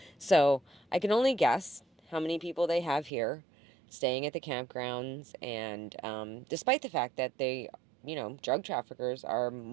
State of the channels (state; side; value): drops out; left; at 3.1 s